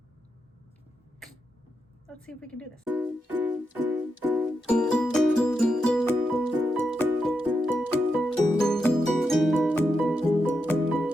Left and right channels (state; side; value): normal; both; correlation 0.85